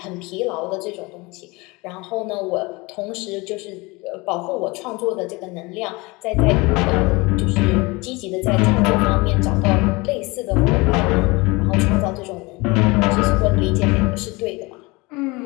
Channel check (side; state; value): right; quieter; 24.6 dB